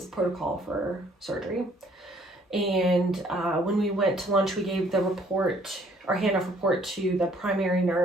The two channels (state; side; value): normal; both; correlation 0.62